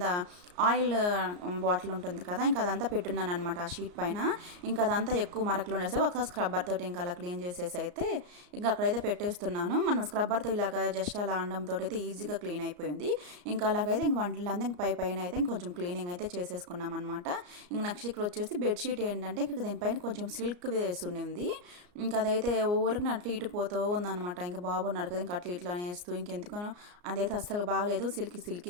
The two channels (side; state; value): left; late; 34 ms